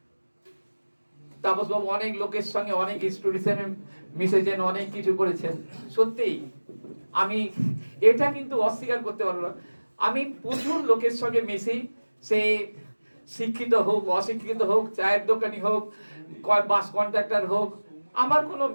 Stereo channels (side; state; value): both; inverted; correlation -1.00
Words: তাপসবাবু অনেক লোকের সঙ্গে অনেক ইনস্টিটিউশনে মিশেছেন, অনেক কিছু করেছেন। সত্যিই আমি এটা কিন্তু অস্বীকার করতে পারবো না। আমি প্রচুর লোকের সঙ্গে মিশি, সে শিক্ষিত হোক অশিক্ষিত হোক, চায়ের দোকানি হোক, বাস কন্ট্রাক্টর হোক, আমার কোনো